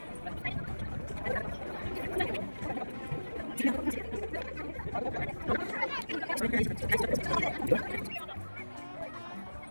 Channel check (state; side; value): inverted; both; correlation -1.00